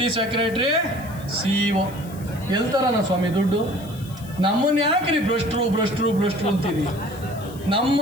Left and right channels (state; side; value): noise; left; hiss, 20 dB below the sound